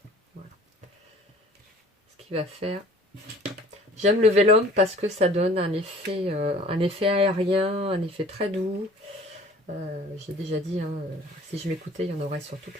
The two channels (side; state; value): both; normal; correlation 0.49